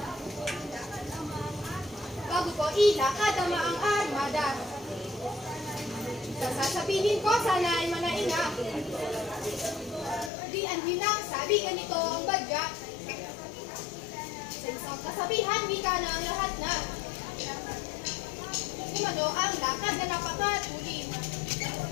Bago ko ilakad ang maang armada. Sasabihin ko sana ay manainga. Di ang hinang sabi ganito ang badya. Sa isang kasabihan, wika na ang lahat na. Kumano ang lakad na napakatuli.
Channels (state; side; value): drops out; right; at 10.3 s